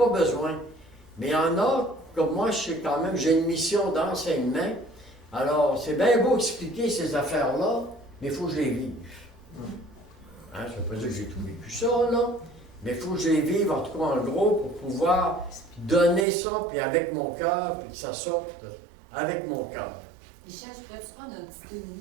besoin. Mais il y en a, comme moi, je sais quand même, j'ai une mission d'enseignement. Alors, c'est bien beau expliquer ces affaires-là, mais il faut que je les vive. Hein, ça ne veut pas dire que j'ai tout vécu ça, là. Mais il faut que je les vive, en tout cas en gros, pour pouvoir donner ça, puis avec mon cœur, puis que ça sorte avec mon cœur. Michel, je pourrais-tu prendre un petit 2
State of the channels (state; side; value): drops out; left; at 16.2 s